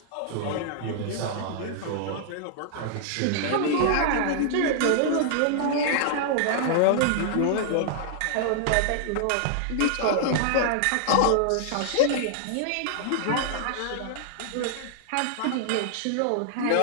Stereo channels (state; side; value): different; both; correlation -0.01